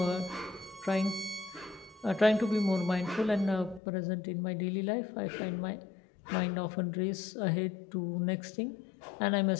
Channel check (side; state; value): right; drops out; at 3.8 s